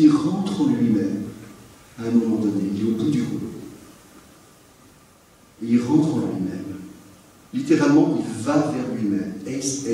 rentre en lui-même à un moment donné, il est au bout du rouleau. Et il rentre en lui-même. Littéralement, il va vers lui-même.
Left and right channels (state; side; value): identical; both; correlation 1.00